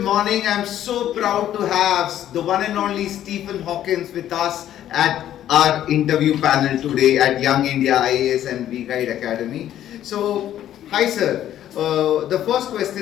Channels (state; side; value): quieter; right; 11.6 dB